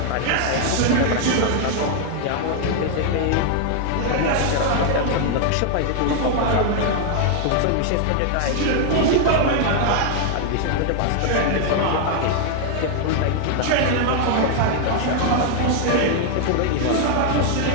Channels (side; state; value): both; different; correlation 0.00